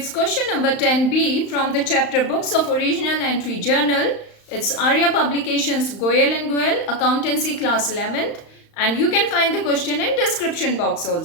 question number 10b from the chapter Books of Original Entry Journal. It's Arya Publications Goyal and Goyal, Accountancy Class 11th, and you can find the question in description box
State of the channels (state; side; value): late; right; 35 ms